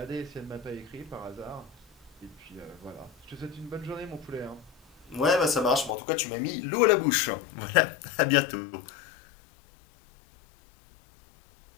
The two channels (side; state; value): right; drops out; at 6.0 s